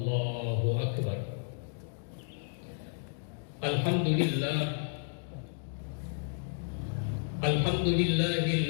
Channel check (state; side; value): silent; right; 56 dB below the other